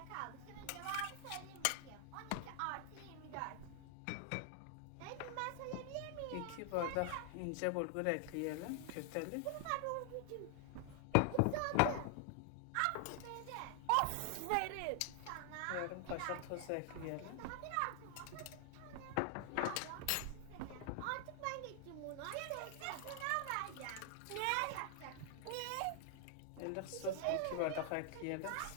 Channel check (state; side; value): different; both; correlation 0.00